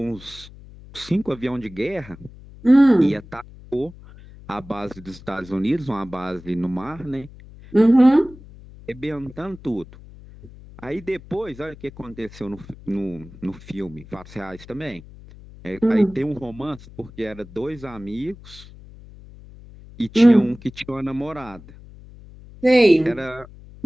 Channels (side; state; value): left; noise; hum, 19 dB below the sound